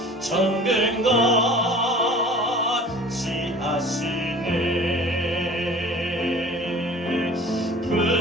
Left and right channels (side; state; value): both; normal; correlation 0.45